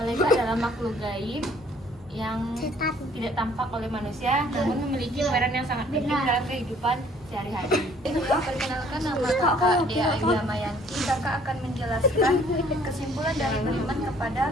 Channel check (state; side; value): normal; both; correlation 0.59